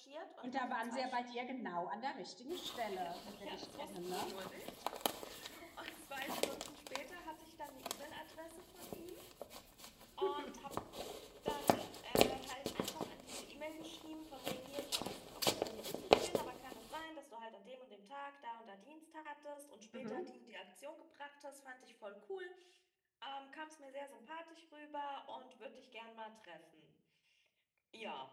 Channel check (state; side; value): identical; both; correlation 1.00